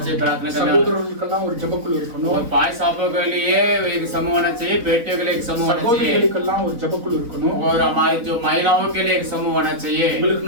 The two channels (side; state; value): left; late; 4.0 ms